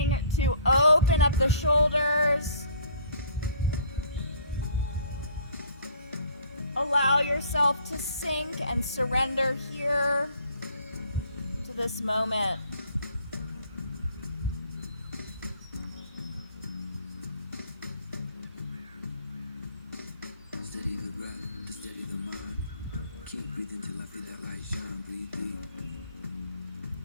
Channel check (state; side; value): inverted; both; correlation -0.56